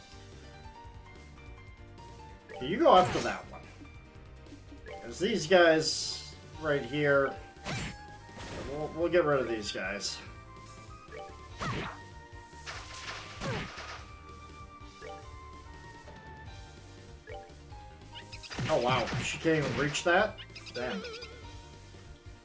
Okay, you go after that one. Because these guys right here, we'll get rid of these guys. Oh wow, she can't even reach that? Damn.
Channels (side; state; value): both; identical; correlation 1.00